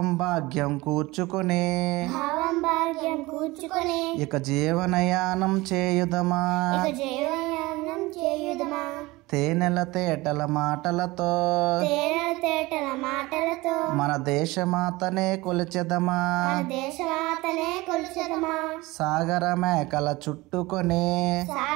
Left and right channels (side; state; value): left; quieter; 21.2 dB